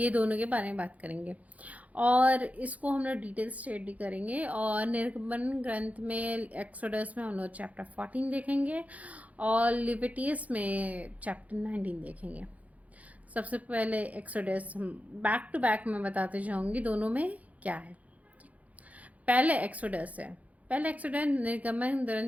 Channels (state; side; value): late; left; 0.070 ms